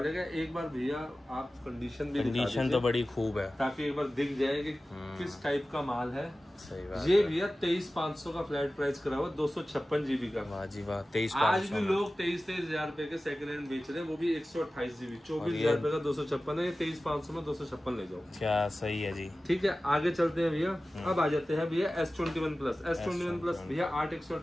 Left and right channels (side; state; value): both; normal; correlation 0.96